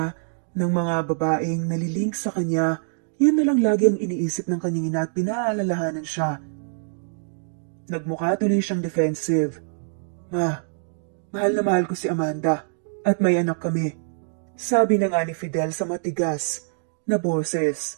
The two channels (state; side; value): silent; left; digital silence